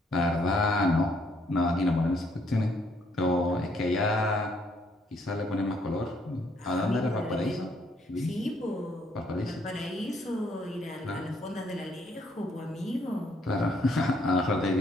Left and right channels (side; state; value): both; normal; correlation 0.69